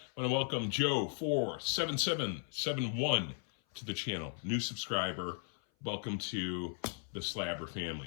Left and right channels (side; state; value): right; silent; 53 dB below the other